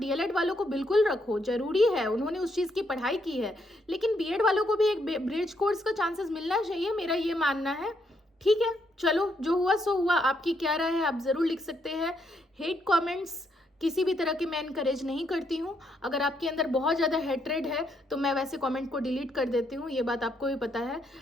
वालों को बिल्कुल रखो, जरूरी है, उन्होंने उस चीज़ की पढ़ाई की है, लेकिन बीएड वालों को भी एक ब्रिज कोर्स का चांसेस मिलना चाहिए, मेरा ये मानना है। ठीक है, चलो जो हुआ सो हुआ। आपकी क्या राय है आप ज़रूर लिख सकते हैं। हेट कमेंट्स किसी भी तरह के मैं इनकरेज नहीं करती हूँ। अगर आपके अंदर बहुत ज़्यादा हेट्रेड है तो मैं वैसे कमेंट को डिलीट कर देती हूँ, ये बात आपको भी पता है।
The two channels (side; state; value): both; normal; correlation 0.76